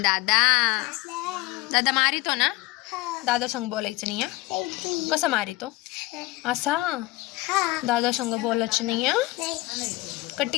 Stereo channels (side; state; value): right; quieter; 19.9 dB